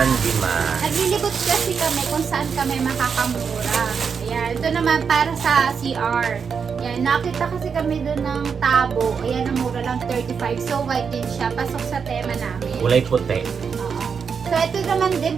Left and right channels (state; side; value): quieter; left; 6.2 dB